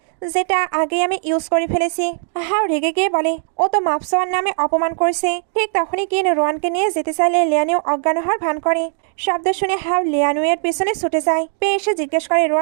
যেটা আগে আমি ইউজ করে ফেলেছি। হাও রেগে গিয়ে বলে, ও তো মাপসোয়ার নামে অপমান করছে। ঠিক তখনই কিন রোয়ানকে নিয়ে যেতে চাইলে লিয়ানিও অজ্ঞান হওয়ার ভান করে। শব্দ শুনে হাও লিয়ানুয়ের পিছনে ছুটে যায়। পেয়ে এসে জিজ্ঞেস করে,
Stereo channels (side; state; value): left; silent; digital silence